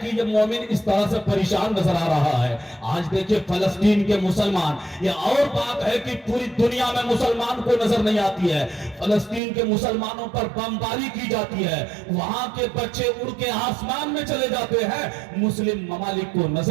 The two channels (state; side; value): drops out; left; at 9.4 s